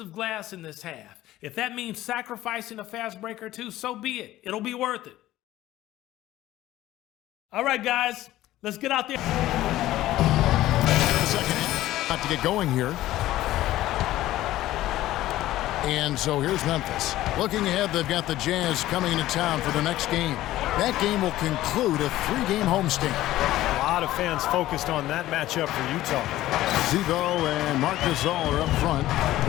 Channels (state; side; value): quieter; right; 15.1 dB